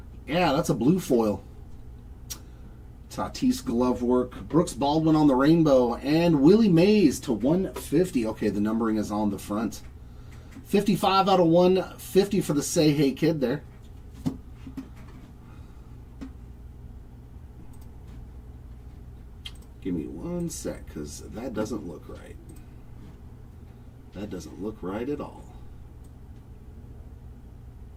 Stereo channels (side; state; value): both; identical; correlation 1.00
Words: Yeah, that's a blue foil. Tatis glove work. Brooks Baldwin on the rainbow. And Willie Mays to 150. Okay, the numbering is on the front. 55 out of 150 for the Say Hey Kid there. Give me one sec, because that doesn't look right. That doesn't look right at all.